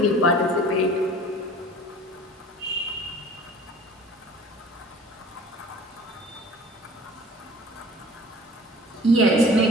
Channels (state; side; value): normal; both; correlation 0.46